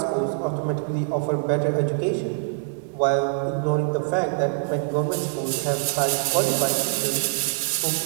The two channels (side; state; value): left; silent; 62 dB below the other